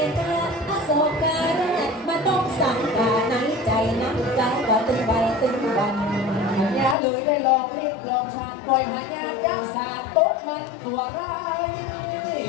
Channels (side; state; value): right; drops out; at 7.0 s